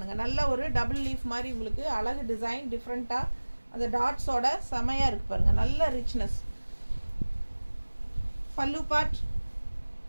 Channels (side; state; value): both; inverted; correlation -1.00